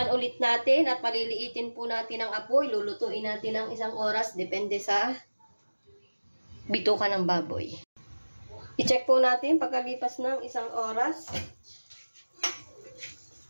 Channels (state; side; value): inverted; both; correlation -1.00